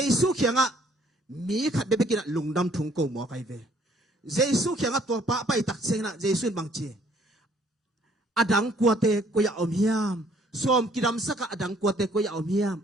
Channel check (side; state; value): both; normal; correlation 0.62